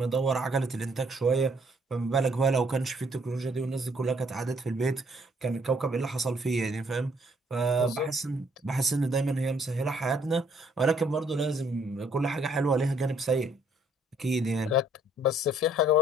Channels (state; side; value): normal; both; correlation 0.65